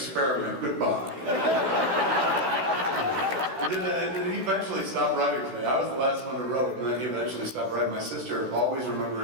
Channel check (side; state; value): left; late; 15 ms